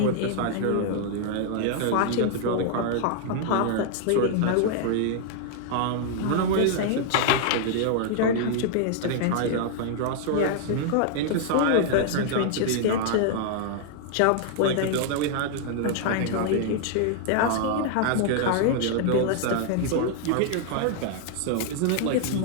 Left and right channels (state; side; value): different; both; correlation -0.01